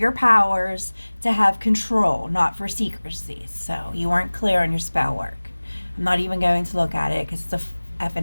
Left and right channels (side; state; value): both; inverted; correlation -1.00